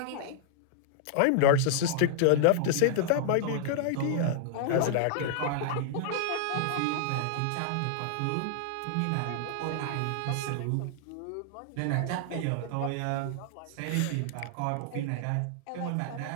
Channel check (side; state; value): both; different; correlation -0.01